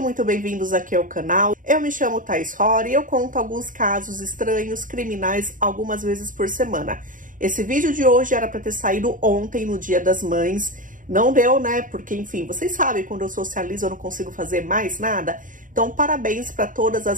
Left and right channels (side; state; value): left; late; 0.39 ms